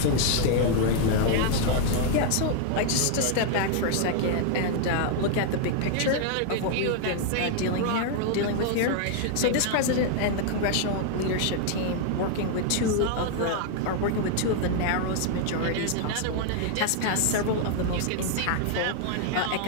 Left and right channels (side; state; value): both; different; correlation 0.00